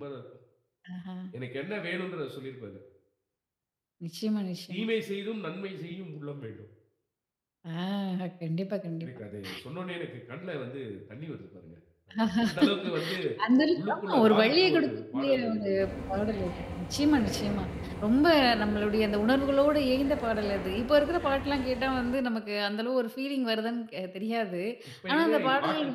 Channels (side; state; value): both; identical; correlation 1.00